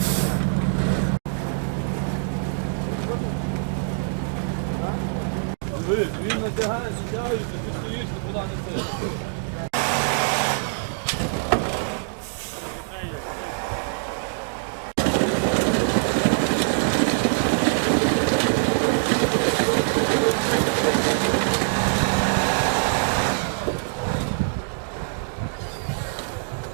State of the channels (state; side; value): silent; left; digital silence